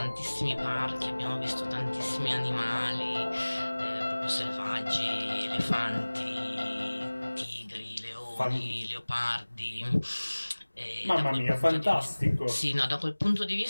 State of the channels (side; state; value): both; inverted; correlation -1.00